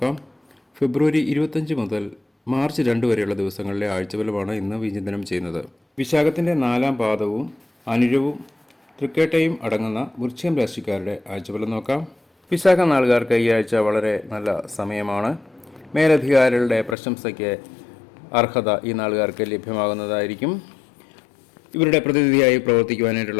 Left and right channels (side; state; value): right; drops out; at 16.9 s